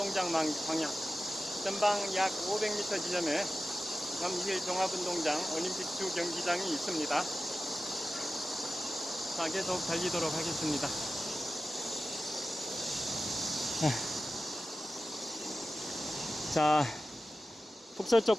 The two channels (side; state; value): both; normal; correlation 0.95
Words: 방향, 전방 약 500m 지점에 잠실 종합운동장 올림픽 주 경기장이 있습니다. 자, 계속 달리도록 하겠습니다. 자,